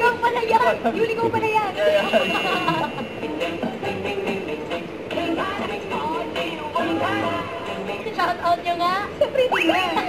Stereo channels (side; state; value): both; identical; correlation 1.00